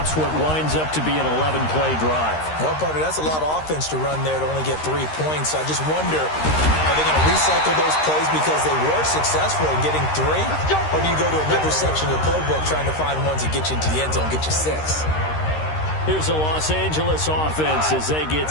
what winds up to be an 11-play drive. Well, partner, that's a lot of offense to run there to only get 3 points. I just wonder, are they going to recycle those plays because they were successful in getting 3? Or do you go to another section of the playbook trying to find ones that get you into the end zone, get you 6? Here's the Los Angeles offense as they get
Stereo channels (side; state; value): right; late; 13 ms